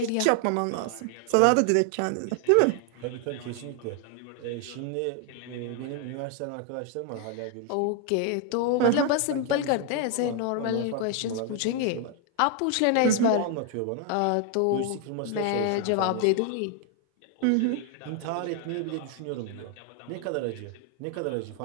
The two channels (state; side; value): different; both; correlation 0.00